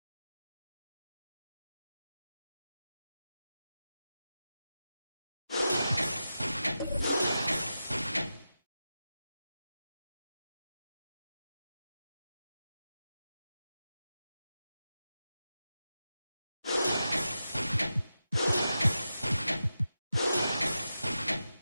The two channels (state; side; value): inverted; both; correlation -0.90